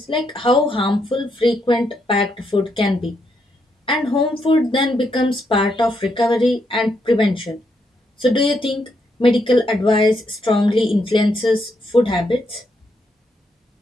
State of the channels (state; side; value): normal; both; correlation 0.78